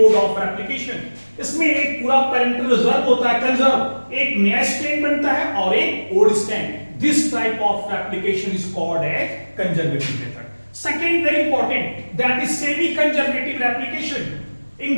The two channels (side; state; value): both; inverted; correlation -1.00